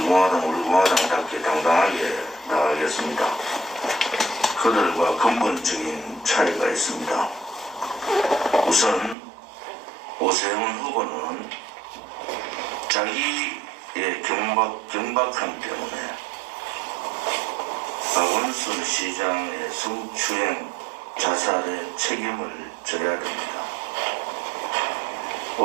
공화당답게 당당하게 나가겠습니다. 그들과 근본적인 차이가 있습니다. 우선 오세훈 후보는 자기의 경박함 때문에 박원순 시장의 성추행 자살의 책임을 져야 됩니다.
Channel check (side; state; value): left; drops out; at 9.2 s